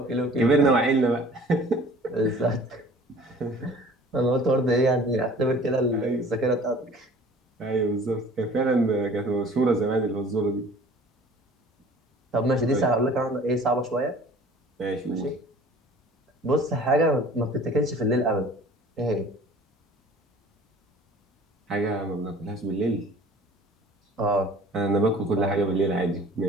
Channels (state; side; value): normal; both; correlation 0.48